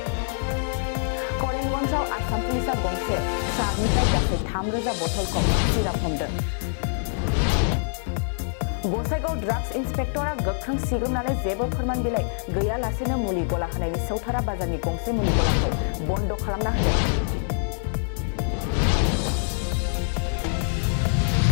करिमगन्जआव आसाम पुलिसआ गंसे ट्राकनिफ्राय गासै 3000 बथलखौ सिराप हमदों। गसाइगाव ड्राग्स इन्सपेक्टरा गोख्रों सिग्रोमनानै जेबो फोरमान बिलाइ गैयालासेनो मुलि गला होनायनि सौथारा बाजारनि गंसे मुलि गलाखौ बन्द खालामना होदों।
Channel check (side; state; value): right; silent; digital silence